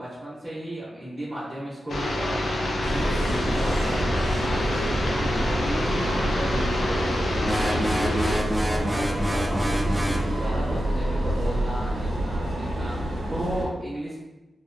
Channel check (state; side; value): normal; both; correlation 0.91